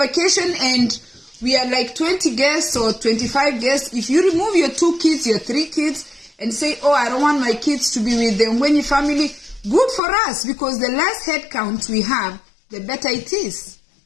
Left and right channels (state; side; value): drops out; right; at 10.0 s